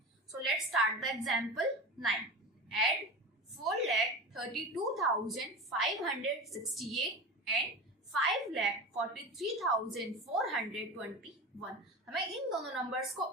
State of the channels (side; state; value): both; normal; correlation 0.29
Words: So let's start the example 9। Add 4,32,568 and 5,43,421। हमें इन दोनों नंबर्स